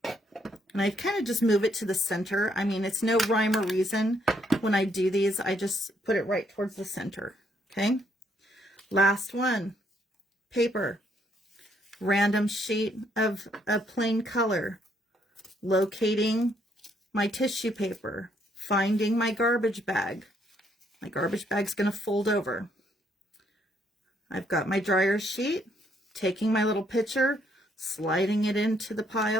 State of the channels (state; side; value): normal; both; correlation 0.71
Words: And I kind of just move it to the center. I mean, it's no rhyme or reason. When I do these, I just put it right towards the center. Okay. Last one. Paper. Random sheet of a plain color. Locating my tissue paper. Finding my garbage bag. My garbage bag's going to fold over. I've got my dryer sheet. Taking my little picture. Sliding it into the